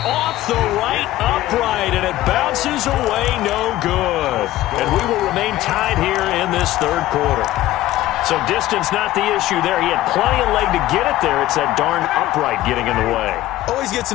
the right upright, and it bounces away no good. And we will remain tied here in this third quarter. So distance not the issue there. He had plenty of leg to get it there. It's that darn upright getting in the way. Always gets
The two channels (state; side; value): quieter; right; 15.4 dB